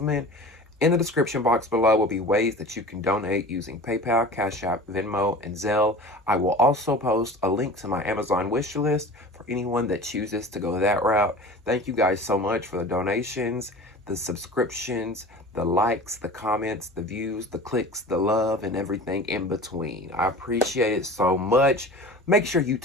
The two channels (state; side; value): normal; both; correlation 0.38